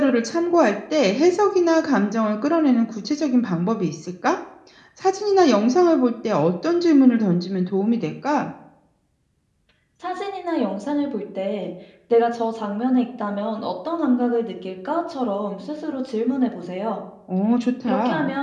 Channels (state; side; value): identical; both; correlation 1.00